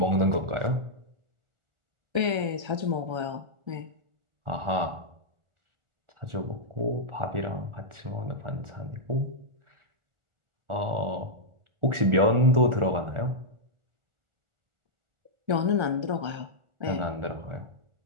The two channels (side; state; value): left; late; 1.4 ms